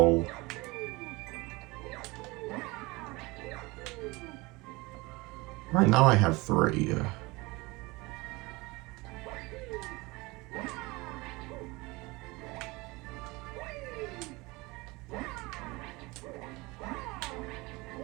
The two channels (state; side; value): quieter; left; 23.6 dB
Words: Right now I have 3.